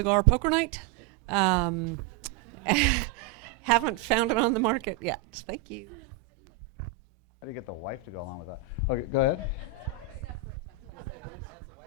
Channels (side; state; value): left; quieter; 8.1 dB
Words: poker night. Haven't found it on the market yet. Thank you. How do you get the wife to go along with that? Okay, go ahead.